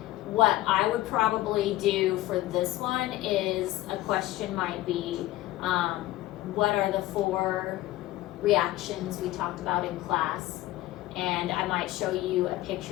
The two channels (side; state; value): right; quieter; 16.4 dB